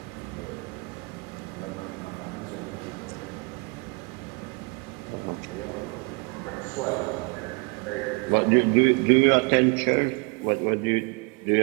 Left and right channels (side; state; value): left; quieter; 31.1 dB